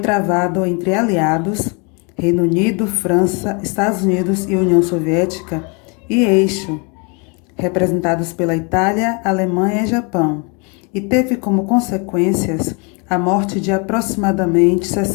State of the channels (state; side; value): quieter; right; 33.1 dB